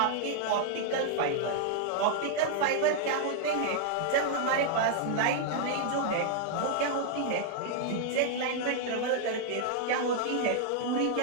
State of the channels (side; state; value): both; different; correlation -0.01